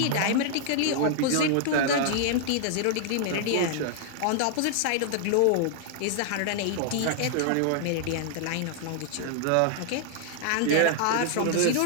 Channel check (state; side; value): different; both; correlation -0.01